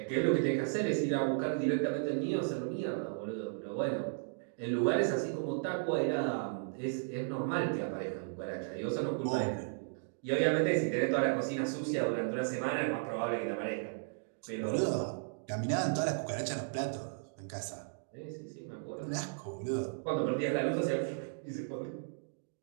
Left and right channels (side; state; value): left; silent; digital silence